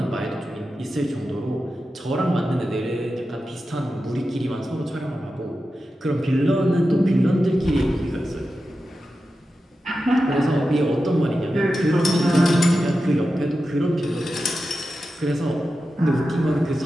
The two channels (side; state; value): both; normal; correlation 0.91